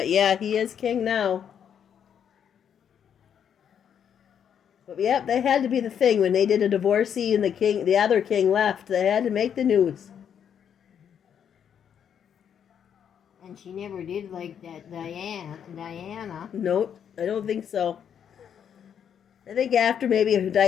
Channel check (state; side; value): quieter; right; 8.4 dB